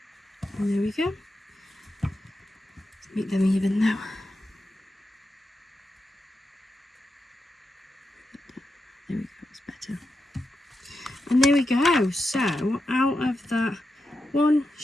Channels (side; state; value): both; normal; correlation 0.88